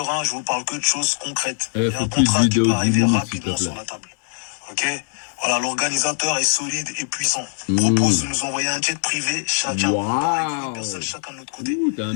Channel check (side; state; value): right; silent; digital silence